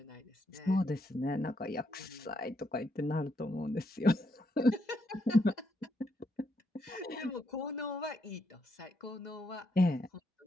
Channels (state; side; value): normal; both; correlation 0.78